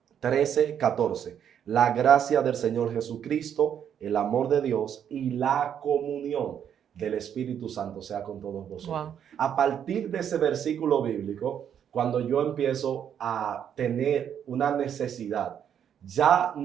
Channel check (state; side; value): quieter; left; 8.9 dB